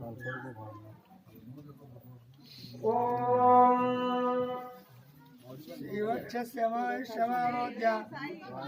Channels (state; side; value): identical; both; correlation 1.00